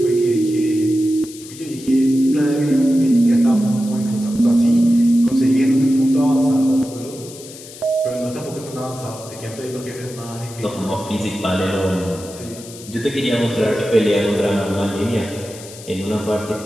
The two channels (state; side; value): noise; left; hiss, 16 dB below the sound